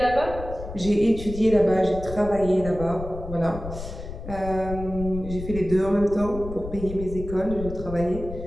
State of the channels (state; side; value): noise; left; rumble, 10 dB below the sound